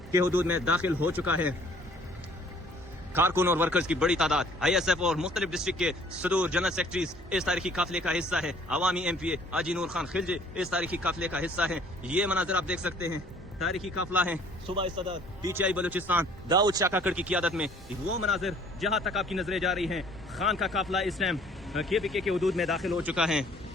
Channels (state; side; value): normal; both; correlation 0.56